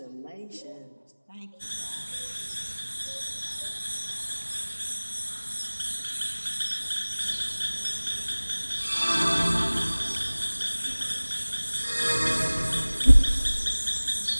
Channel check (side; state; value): both; inverted; correlation -1.00